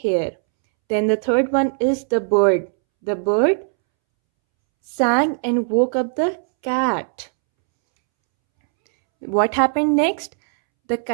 Then the third one is the bird. The bird sang and woke up the cat. What happened next? The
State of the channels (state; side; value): silent; left; 66 dB below the other